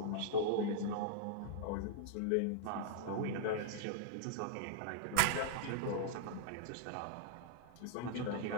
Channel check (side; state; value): both; different; correlation -0.01